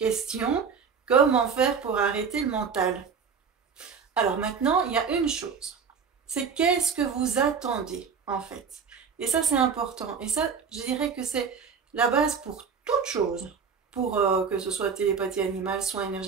Comment faire pour arrêter le mental? Alors maintenant, il y a une chose. C'est qu'est-ce que vous attendez en fait? Et ça, c'est important. Et ça, je dirais que c'est la base pour toute chose. Pour que ce soit télépathie animale, soins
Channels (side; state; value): left; quieter; 6.1 dB